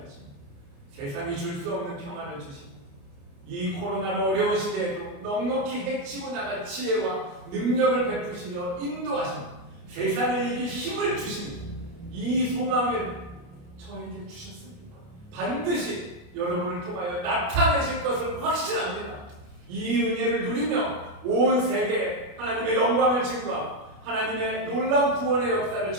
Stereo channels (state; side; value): late; left; 29 ms